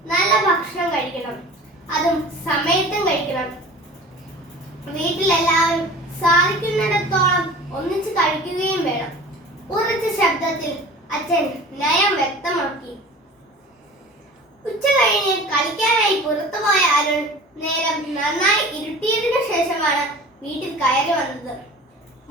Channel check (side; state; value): both; normal; correlation 0.40